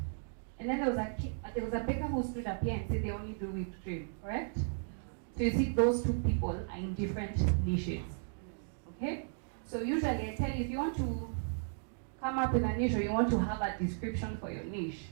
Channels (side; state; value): left; silent; digital silence